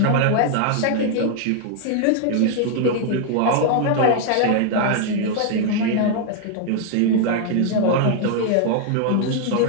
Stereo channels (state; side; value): different; both; correlation 0.00